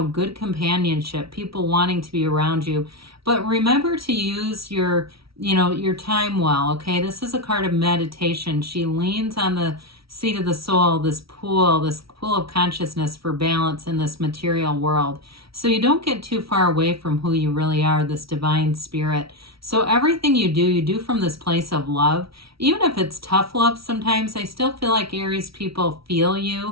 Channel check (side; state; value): left; late; 0.75 ms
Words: good companionship, people wanting to be around you. But remember to use your time well, okay? This is a card of meditation. She leans on the seat of the soul, this pool of consciousness for balance in this material world. So you don't get too far away from who you really are, this divine spirit. So everything you do from this place of love. Even if it's tough love sometimes, I still feel like Aries people feel